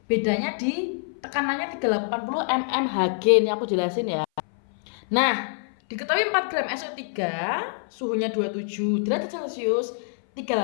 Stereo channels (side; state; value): right; silent; 58 dB below the other